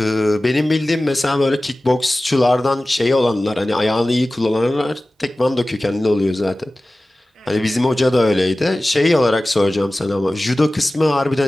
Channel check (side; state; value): both; normal; correlation 0.97